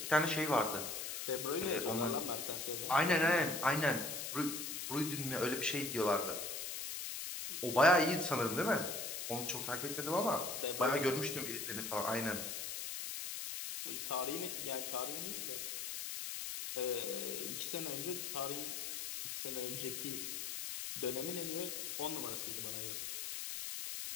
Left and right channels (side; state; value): left; noise; hiss, 4 dB below the sound